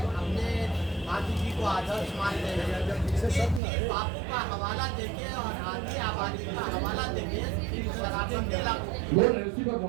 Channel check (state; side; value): drops out; left; at 3.6 s